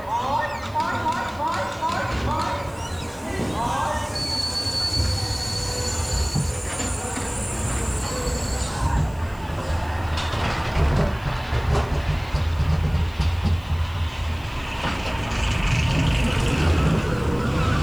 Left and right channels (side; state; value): left; noise; hiss, 25 dB below the sound